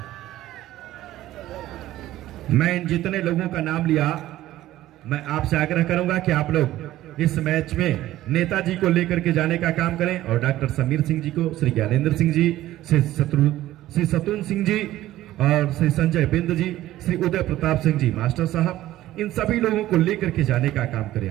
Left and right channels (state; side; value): quieter; left; 14.8 dB